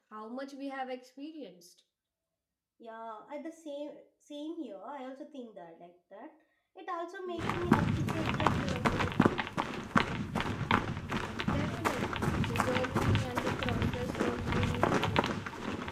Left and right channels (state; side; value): identical; both; correlation 1.00